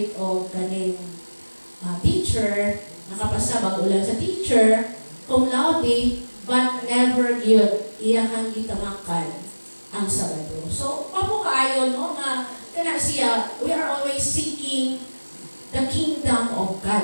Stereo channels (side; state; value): both; inverted; correlation -1.00